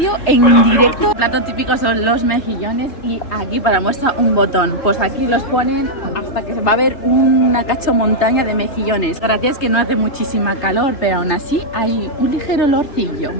en directo. El plato típico son los mejillones y aquí para muestra un botón. Pues aquí los ponen hasta que se va a ver una cachomontaña de mejillones. Gracias que no hace muchísima calor, pero aún así hay un ligero olorcillo.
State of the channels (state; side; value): late; right; 3.3 ms